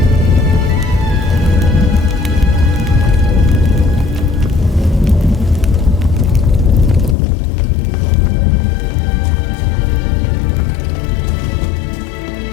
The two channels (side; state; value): right; drops out; at 7.2 s